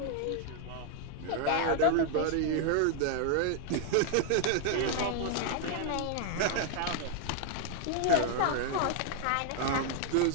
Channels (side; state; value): both; different; correlation 0.00